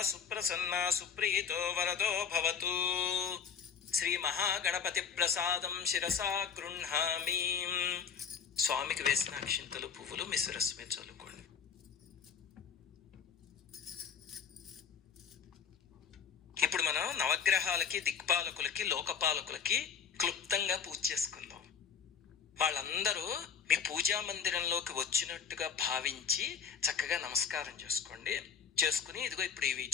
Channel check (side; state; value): right; quieter; 7.0 dB